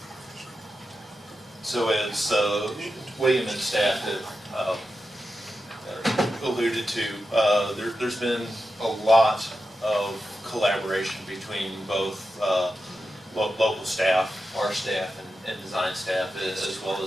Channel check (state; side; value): normal; both; correlation 0.90